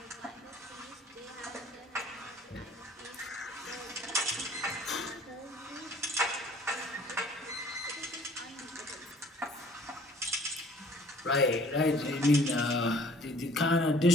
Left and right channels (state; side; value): normal; both; correlation 0.54